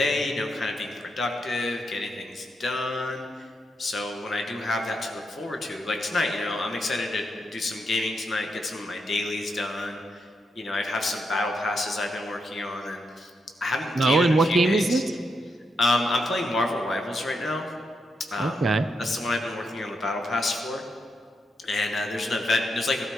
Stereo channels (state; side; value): normal; both; correlation 0.82